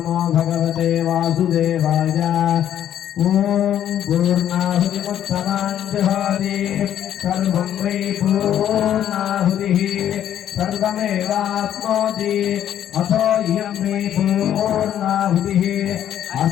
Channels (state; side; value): quieter; right; 10.6 dB